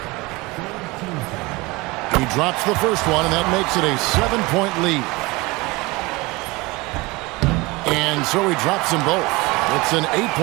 He drops the first one, and that makes it a 7-point lead. And so he drops them both. It's an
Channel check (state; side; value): quieter; left; 23.4 dB